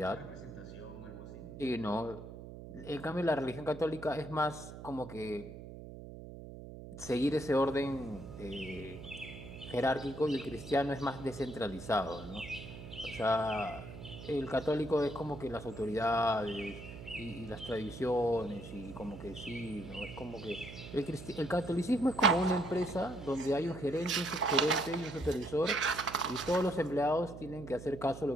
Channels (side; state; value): right; noise; hum, 12 dB below the sound